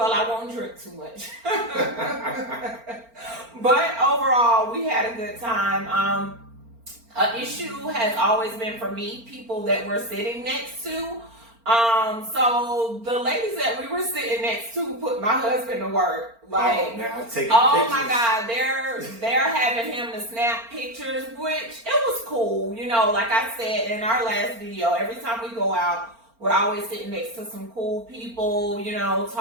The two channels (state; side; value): late; left; 4.4 ms